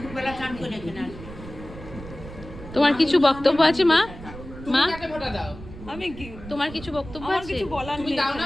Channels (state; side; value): noise; right; rumble, 14 dB below the sound